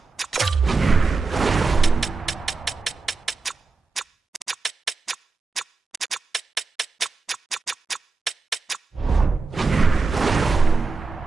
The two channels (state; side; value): quieter; left; 4.1 dB